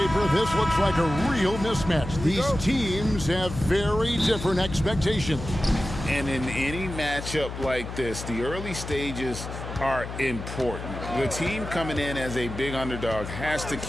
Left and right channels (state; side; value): noise; left; hum, 8 dB below the sound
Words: this looks like a real mismatch. These teams have very different expectations. And in any matchup like this, the early stages are important. The team coming in as a big underdog has to